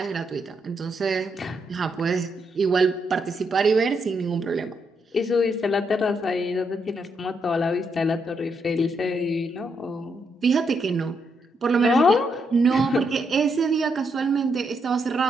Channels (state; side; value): normal; both; correlation 0.79